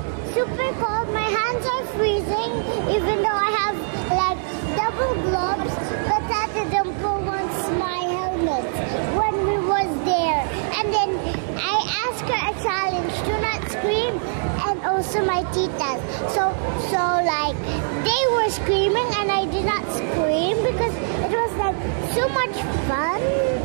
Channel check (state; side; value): silent; left; 64 dB below the other